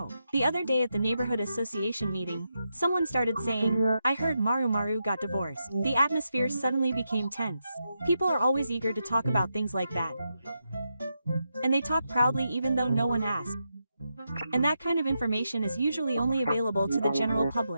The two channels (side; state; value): both; inverted; correlation -0.85